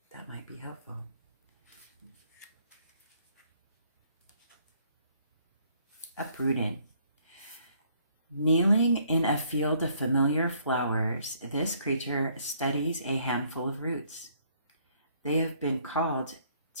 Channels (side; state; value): both; inverted; correlation -0.65